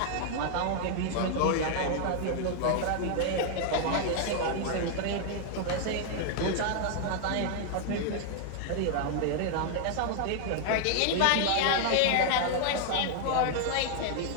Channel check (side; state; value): both; different; correlation 0.00